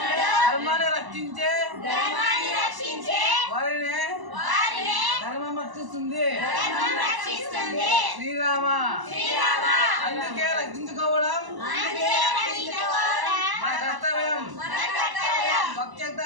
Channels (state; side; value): late; left; 1.0 ms